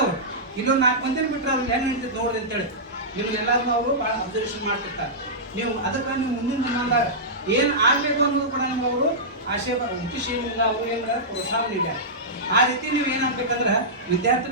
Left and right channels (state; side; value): normal; both; correlation -0.13